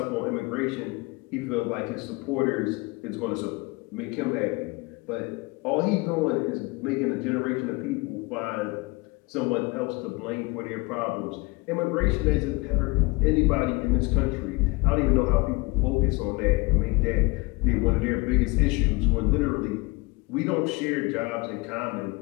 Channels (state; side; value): quieter; right; 24.9 dB